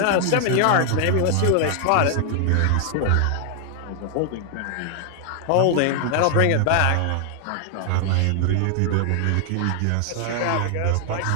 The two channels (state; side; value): different; both; correlation 0.00